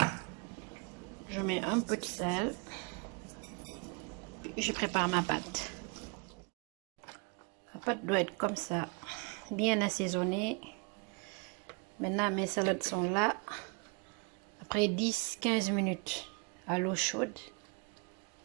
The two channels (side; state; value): left; quieter; 32.5 dB